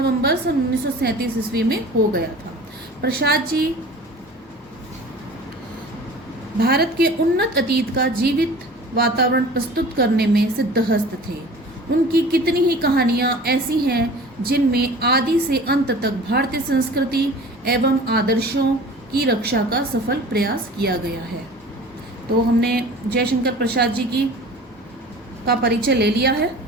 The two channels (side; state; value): both; normal; correlation 0.42